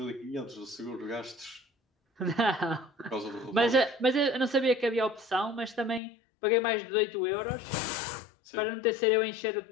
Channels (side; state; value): right; drops out; at 6.0 s